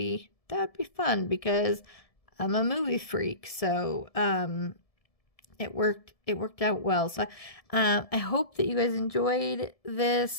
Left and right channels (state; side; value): late; right; 1.7 ms